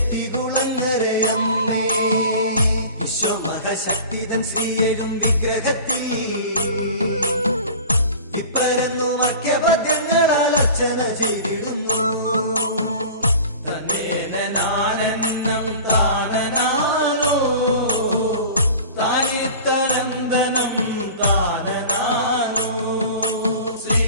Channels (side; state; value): both; inverted; correlation -0.39